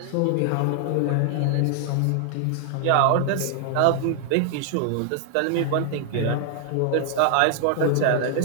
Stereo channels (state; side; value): different; both; correlation 0.00